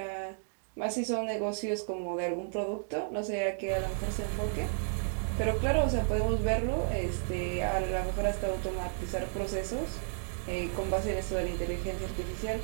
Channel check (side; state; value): left; silent; digital silence